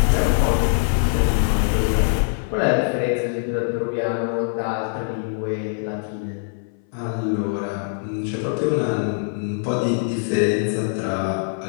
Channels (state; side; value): silent; right; 60 dB below the other